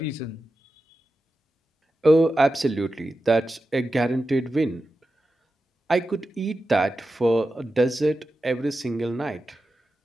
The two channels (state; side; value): normal; both; correlation 0.92